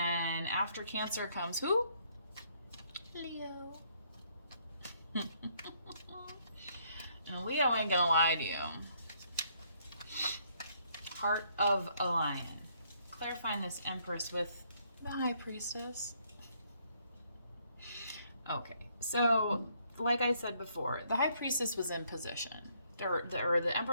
after Cancer comes who? Leo. And Leo ain't gonna lie to you. Heart of a Lion. Clarifying this Empress with the High Priestess. Okay, so like I said before, the High Priestess was in position. Or the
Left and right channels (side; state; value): both; inverted; correlation -0.69